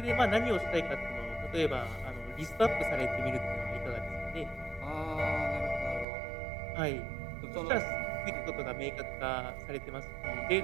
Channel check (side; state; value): left; drops out; at 6.1 s